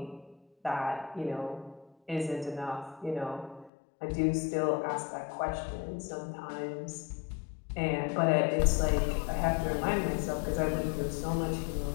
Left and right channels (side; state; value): right; drops out; at 3.7 s